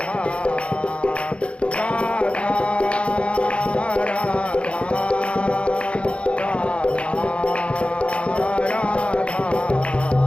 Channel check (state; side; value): late; right; 0.060 ms